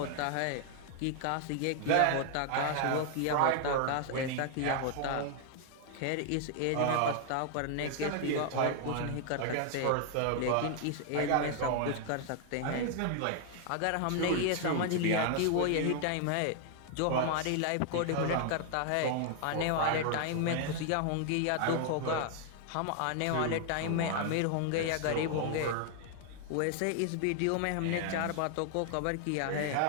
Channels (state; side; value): different; both; correlation 0.00